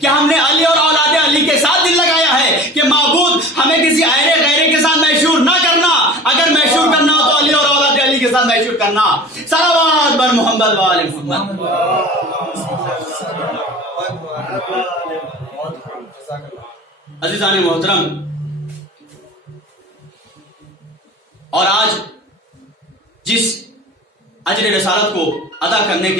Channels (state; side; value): normal; both; correlation 0.39